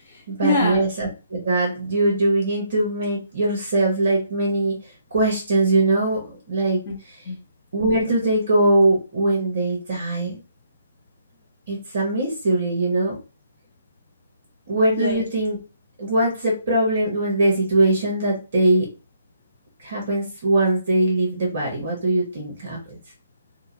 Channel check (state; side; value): inverted; both; correlation -0.72